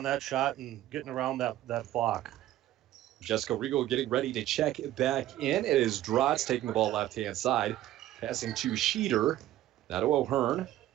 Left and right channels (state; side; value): quieter; left; 13.7 dB